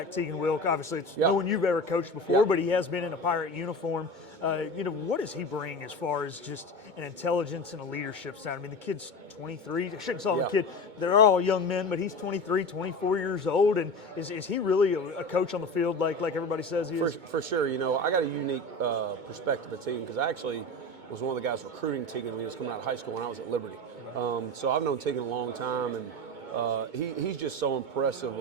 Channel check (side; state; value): left; late; 2.2 ms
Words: Tegan Wilk. Obviously, it's no one you've ever coached before, but he has been in a Pirate uniform. What does he bring as far as just an intelligence and a leadership side? I mean, the kid's 23. I shouldn't call him a kid. They're all young men, but he's 23, 24 years old. And is he really a coach on the field like everybody says he is? For sure. I got a unique perspective of Tegan because I actually was one of the guys recruiting Tegan when he was coming out of high school when I was at Liberty. So I've known Tegan a long time, and he's just so impressive